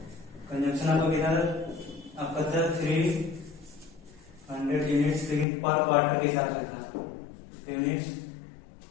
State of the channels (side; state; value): right; drops out; at 5.5 s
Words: कंजम्पशन आपको कितना आपका था 300 यूनिट्स, लेकिन पर क्वार्टर के हिसाब से था, यूनिट्स